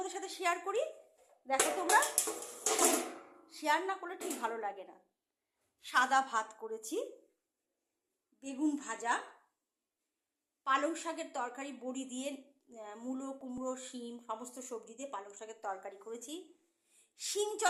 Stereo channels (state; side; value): identical; both; correlation 1.00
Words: সাথে শেয়ার করি। দেখো, তোমরা শেয়ার না করলে ঠিক ভালো লাগে না। সাদা ভাত করেছি, বেগুন ভাজা, পালং শাকের তরকারি বড়ি দিয়ে, মূলো কুমড়ো শিম সমস্ত সবজি দিয়ে পালং শাকের তরকারি করেছি। শিম